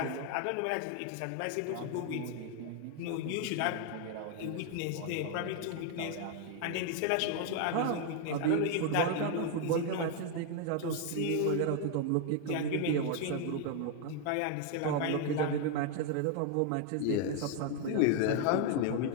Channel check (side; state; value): both; different; correlation 0.01